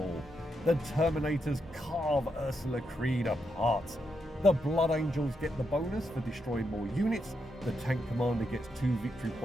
The Terminators carve Ursula Creed apart. The Blood Angels get the bonus for destroying more units. The Tank Commander gets 2 victory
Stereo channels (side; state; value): both; normal; correlation 0.82